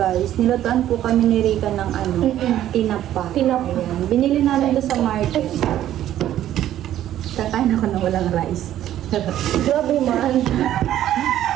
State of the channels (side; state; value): left; quieter; 12.2 dB